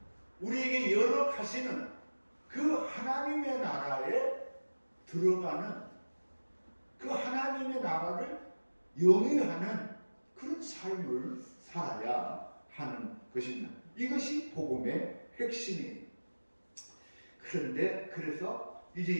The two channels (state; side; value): inverted; both; correlation -1.00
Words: 우리에게 열어가시는 그 하나님의 나라에 들어가는, 그 하나님의 나라를 영위하는 그런 삶을 살아야 하는 것입니다. 이것이 복음의 핵심이에요. 그런데 그래서